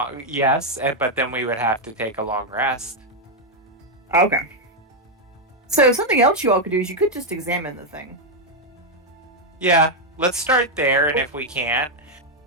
yes, but then we would have to take a long rest. Okay. So something else you all could do is you could just examine the thing. Yeah, let's start there, and if we can't,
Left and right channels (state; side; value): normal; both; correlation 0.00